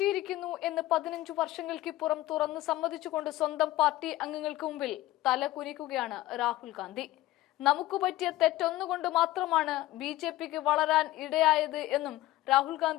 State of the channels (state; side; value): quieter; right; 16.3 dB